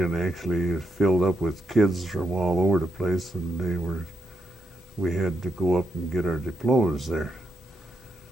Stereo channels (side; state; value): both; normal; correlation 0.81